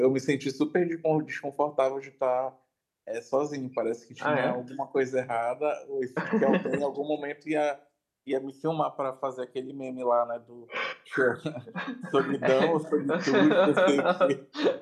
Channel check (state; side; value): identical; both; correlation 1.00